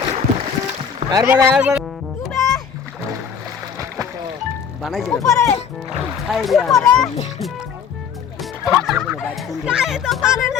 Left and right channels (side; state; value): right; quieter; 7.1 dB